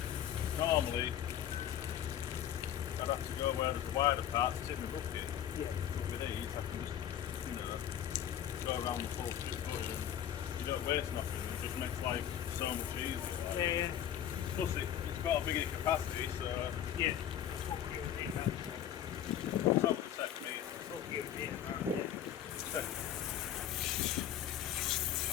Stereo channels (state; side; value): quieter; right; 10.4 dB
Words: Normally, I'd have to go where there's a wider part to tip my bucket. Yeah. But with these, I can just, go around the full strip bush and you don't waste nothing. It just makes life so much easier. Like. Yeah. Plus, it's got a bigger capacity, so. Yeah. It's what you would need, that's Top of 7 metres. what you would need, I